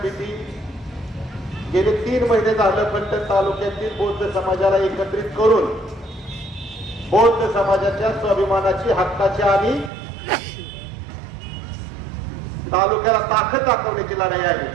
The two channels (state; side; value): drops out; left; at 9.9 s